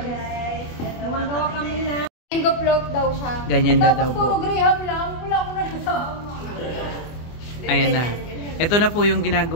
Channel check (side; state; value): right; late; 24 ms